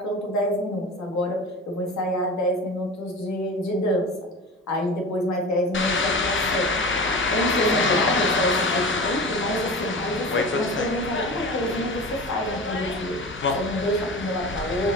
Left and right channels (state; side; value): normal; both; correlation 0.33